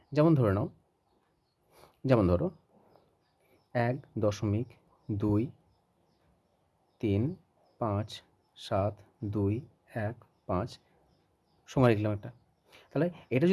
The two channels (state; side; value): identical; both; correlation 1.00